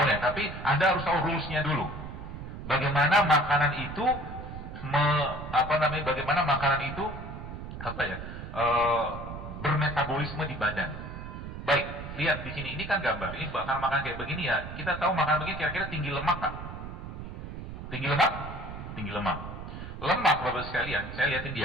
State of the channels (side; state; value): right; noise; rumble, 9 dB below the sound